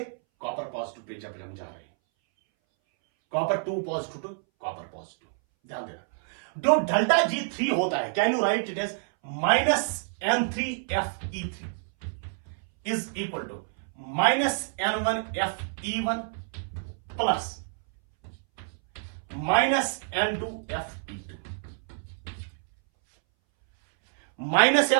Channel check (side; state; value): left; silent; 59 dB below the other